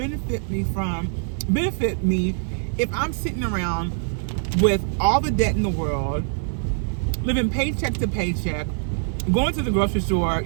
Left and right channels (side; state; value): left; silent; digital silence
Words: me if I'm sitting around with all the debt in the world, living paycheck to paycheck, going to the grocery store,